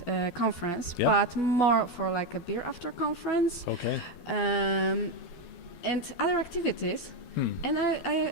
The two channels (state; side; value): late; right; 12 ms